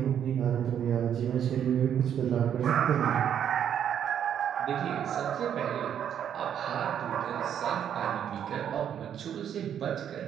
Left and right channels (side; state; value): left; quieter; 9.2 dB